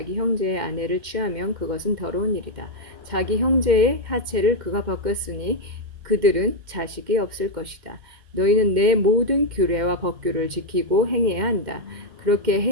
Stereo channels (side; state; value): left; late; 2.1 ms